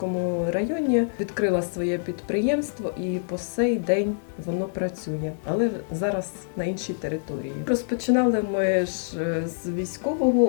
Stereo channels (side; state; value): right; silent; digital silence